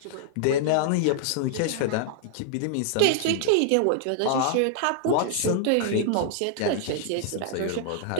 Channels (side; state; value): both; different; correlation -0.01